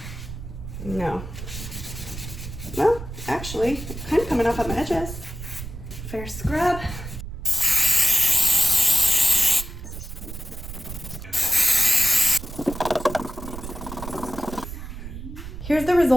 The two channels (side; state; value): right; noise; rumble, 10 dB below the sound